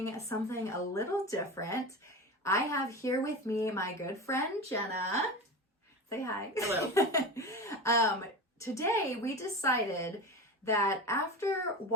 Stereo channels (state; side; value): normal; both; correlation 0.27